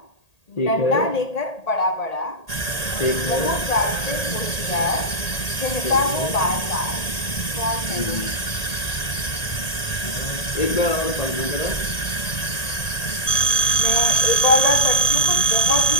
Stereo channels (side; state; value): right; late; 1.8 ms